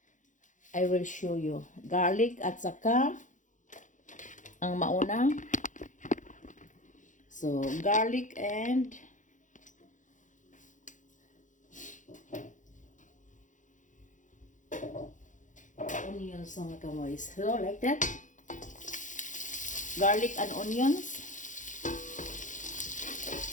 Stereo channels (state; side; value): late; right; 0.37 ms